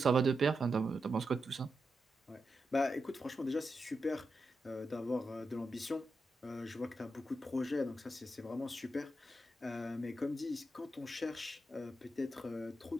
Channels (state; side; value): normal; both; correlation 0.87